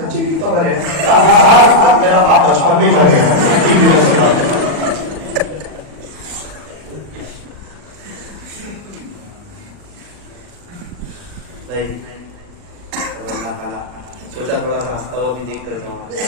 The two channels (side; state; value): left; late; 40 ms